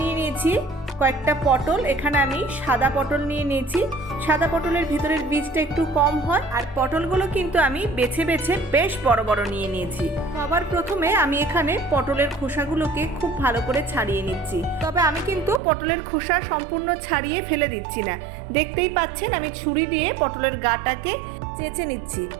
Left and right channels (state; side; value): drops out; left; at 15.6 s